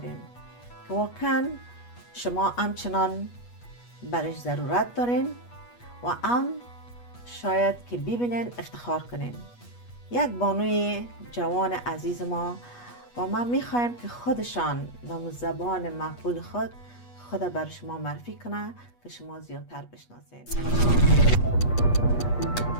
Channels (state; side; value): late; right; 8.3 ms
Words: که واقعا شما همچنان برش ضرورت دارین و شاید که ببینین افتخار کنین. یک بانوی جوان عزیز ما و ما میخوایم که خودشان به زبان مقبول خود بر شما معرفی کنه که شما زیادتر بشناسین.